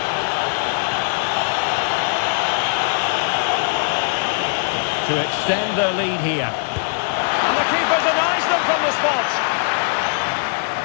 To extend their lead here. And the keeper denies them from the spot.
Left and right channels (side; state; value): right; silent; digital silence